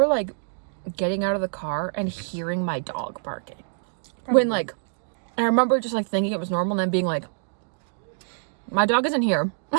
like getting out of the car and hearing my dog barking. Probably. When like, and I remember just like thinking it was normal, and then being like, my dog isn't here.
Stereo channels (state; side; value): silent; left; digital silence